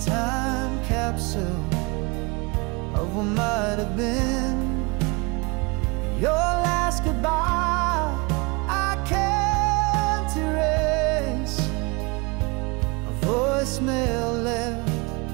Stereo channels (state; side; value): quieter; left; 28.6 dB